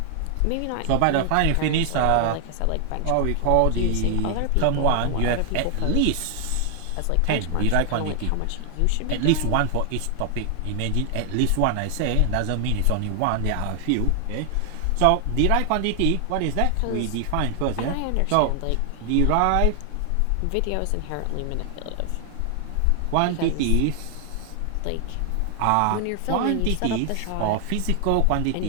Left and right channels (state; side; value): different; both; correlation 0.00